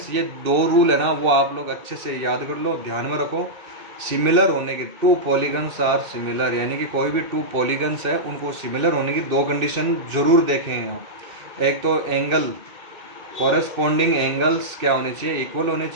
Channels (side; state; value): left; late; 2.7 ms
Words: ये 2 रूल है ना वो आप लोग अच्छे से याद कर लो, ध्यान में रखो। सिमिलर होने के 2 पॉलीगन्स आर सिमिलर, यानी कि कोई भी 2 पॉलीगन्स है उनको सिमिलर होने की 2 कंडीशन जरूर देखें हैं। एक तो एंगल, कॉरेस्पॉन्डिंग एंगल्स क्या होने चाहिए, इक्वल होने